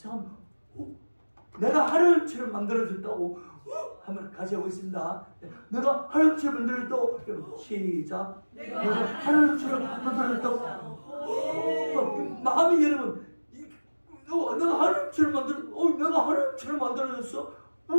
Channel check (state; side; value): inverted; both; correlation -1.00